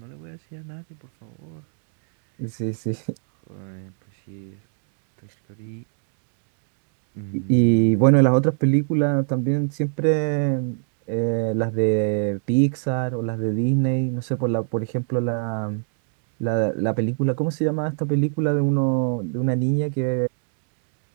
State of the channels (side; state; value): left; silent; digital silence